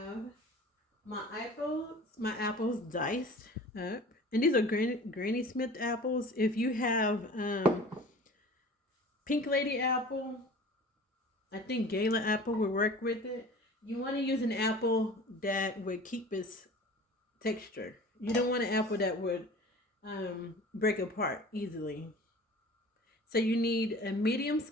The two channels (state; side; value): normal; both; correlation 0.42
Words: my apples diced up. And these are Granny Smith apples. If you have Pink Lady apple, I think Gala apple will work with it. You want to use an apple that would keep its texture. You don't want an apple that would break apart easily. So you need a medium